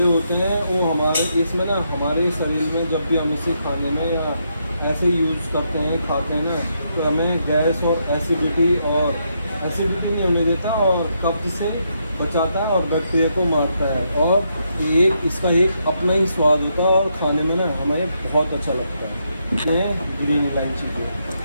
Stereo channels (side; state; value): both; inverted; correlation -0.79